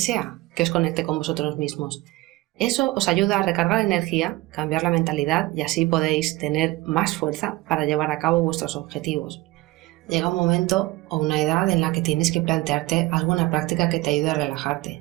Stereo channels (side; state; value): left; quieter; 19.7 dB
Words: que os conecte con vosotros mismos. Eso os ayuda a recargar energía, cambiar la mentalidad y así podéis tener más fuerza para llevar a cabo vuestros objetivos. Llega un momento o una edad en la que tienes que plantearte alguna práctica que te ayude a